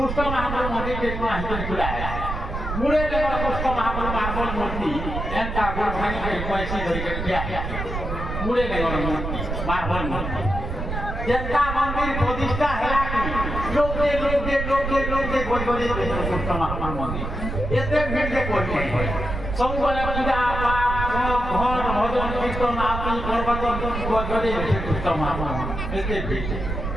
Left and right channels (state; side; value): noise; right; rumble, 4 dB below the sound